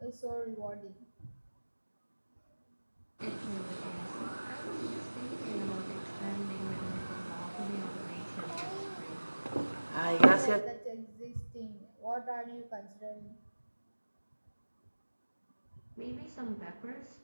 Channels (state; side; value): inverted; both; correlation -1.00